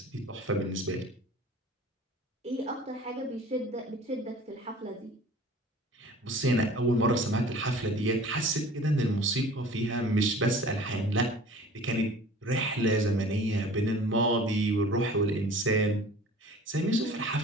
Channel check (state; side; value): normal; both; correlation 0.45